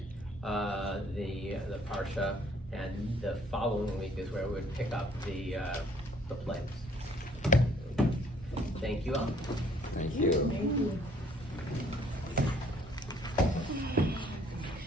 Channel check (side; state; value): both; normal; correlation 0.60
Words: the Parsha, and the following week is where we would pick up the plagues. Thank you all. Thank you. Thank you.